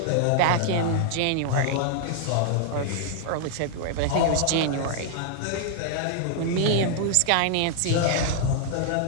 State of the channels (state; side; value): different; both; correlation 0.00